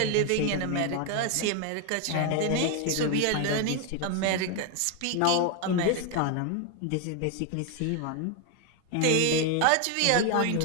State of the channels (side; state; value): both; different; correlation 0.01